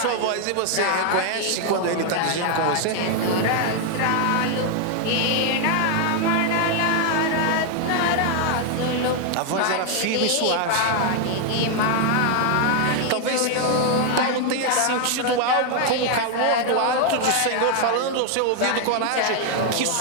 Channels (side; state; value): both; different; correlation 0.00